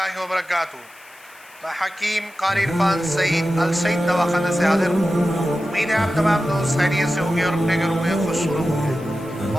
وبرکاتہ۔ میں حکیم قاری عرفان سعید السعید دواخانہ سے حاضر ہوں۔ امید ہے آپ تمام دوست خیریت سے ہوں گے اور اپنے گھروں میں خوش ہوں گے۔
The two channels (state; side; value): noise; left; hiss, 25 dB below the sound